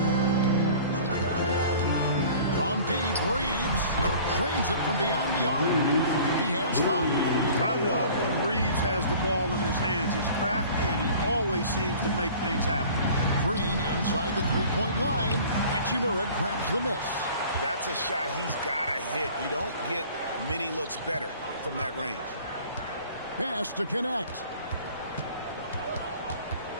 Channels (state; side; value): inverted; both; correlation -0.47